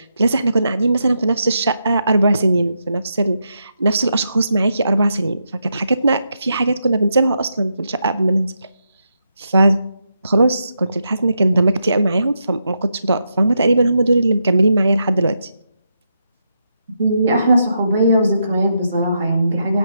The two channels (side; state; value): both; inverted; correlation -0.83